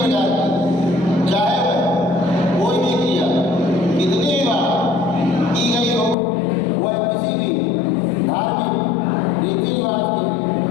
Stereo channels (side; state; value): right; drops out; at 6.2 s